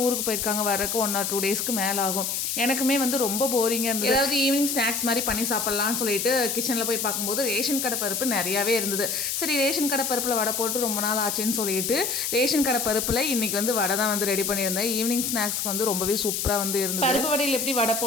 ஊருக்கு போயிருக்காங்க, வரக்கு 1 or 2 டேஸ்க்கு மேலே ஆகும். எனக்குமே வந்து ரொம்ப போரிங்காக இருந்தது. ஏதாவது ஈவினிங் ஸ்நாக்ஸ் மாதிரி பண்ணி சாப்பிட்லான்னு சொல்லிட்டு கிச்சனில் போய் பார்க்கும்போது ரேஷன் கடை பருப்பு நிறையாவே இருந்தது. சரி ரேஷன் கடை பருப்பில் வடை போட்டு ரொம்ப நாள் ஆச்சுன்னு சொல்லிட்டு ரேஷன் கடை பருப்பில் இன்றைக்கி வந்து வடை தான் வந்து ரெடி பண்ணியிருந்தேன். ஈவினிங் ஸ்நாக்ஸ்க்கு வந்து ரொம்பவே சூப்பராக வந்து இருந்தது. பருப்பு வடையில் எப்படி வடை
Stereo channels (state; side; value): noise; left; hiss, 1 dB below the sound